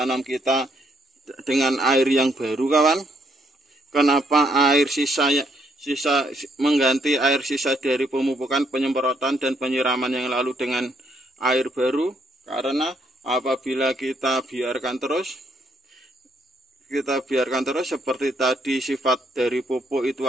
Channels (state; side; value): normal; both; correlation 0.71